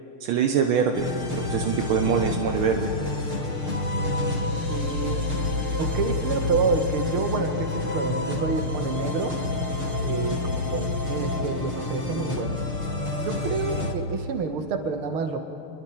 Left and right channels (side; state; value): left; late; 6.6 ms